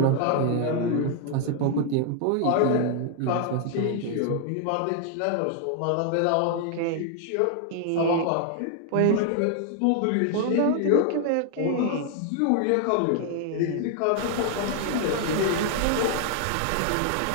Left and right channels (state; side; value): different; both; correlation 0.00